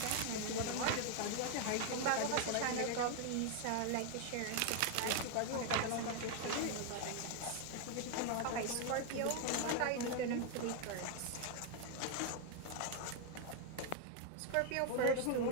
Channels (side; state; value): both; different; correlation 0.00